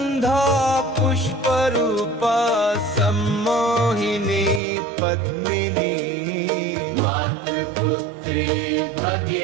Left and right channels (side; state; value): left; drops out; at 4.6 s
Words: पुष्परूपा सम्मोहिनी पद्मिनी मातृपुत्री